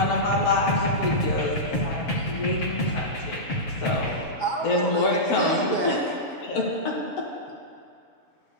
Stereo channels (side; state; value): right; late; 6.9 ms